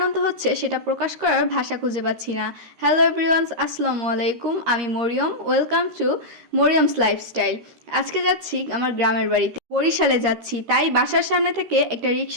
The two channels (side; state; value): left; late; 13 ms